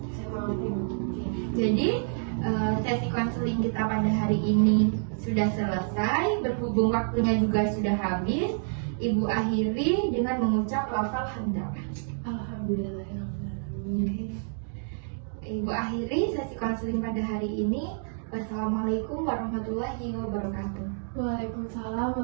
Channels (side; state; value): left; silent; digital silence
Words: saya mengerti Bu. Jadi sesi konseling kita pada hari ini sudah selesai, berhubung waktunya juga sudah habis. Ibu akhiri dengan mengucap lafal hamdalah. Alhamdulillahirrahmanirrahim. Ibu akhiri sesi konseling pada hari ini. Wassalamualaikum warahmatullahi wabarakatuh. Waalaikumsalam